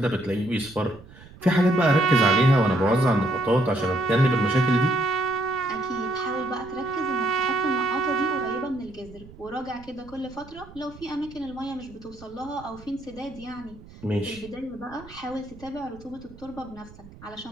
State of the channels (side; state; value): right; noise; rumble, 20 dB below the sound